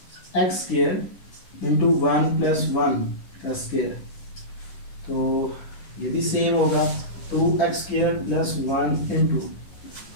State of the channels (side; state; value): right; late; 10 ms